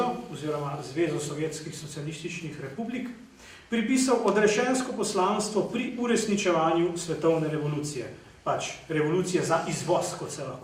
oziroma Zvezo sovjetskih socialističnih republik, pripisal odrešensko poslanstvo pri uresničevanju svetovne revolucije. Pač revolucije za izvoz, kot se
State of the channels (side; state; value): both; identical; correlation 1.00